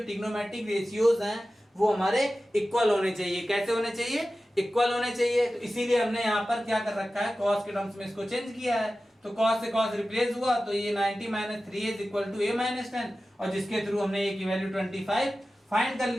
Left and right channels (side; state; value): both; normal; correlation 0.95